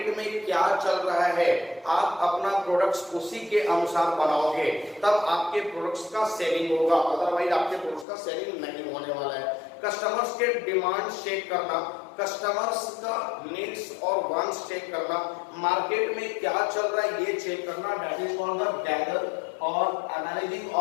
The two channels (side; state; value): right; drops out; at 8.1 s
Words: में क्या चल रहा है। आप अपना प्रोडक्ट्स उसी के अनुसार बनाओगे, तब आपके प्रोडक्ट्स का सेलिंग होगा, अदरवाइज आपके प्रोडक्ट्स का सेलिंग नहीं होने वाला है। कस्टमर्स के डिमांड चेक करना, कस्टमर्स का नीड्स और वांट्स चेक करना, मार्केट में क्या चल रहा है ये चेक करना, that is called the gather और एनालाइजिंग